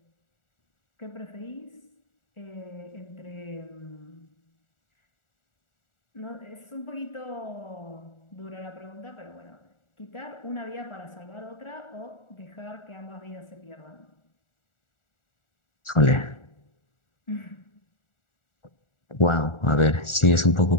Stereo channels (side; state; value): right; late; 1.4 ms